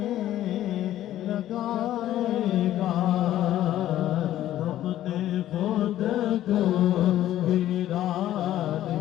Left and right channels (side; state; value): right; quieter; 13.0 dB